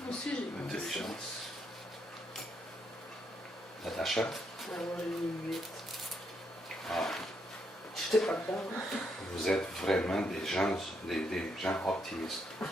Moi aussi, j'ai mis ça. Intelligence. Natacha? Ouais, moi, j'ai mis 8. Ah, J'étais pas dedans. vous êtes vraiment des gens optimistes. Ah,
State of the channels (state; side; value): normal; both; correlation 0.77